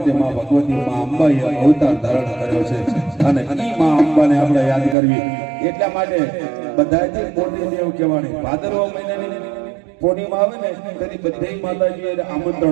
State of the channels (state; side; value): drops out; left; at 5.0 s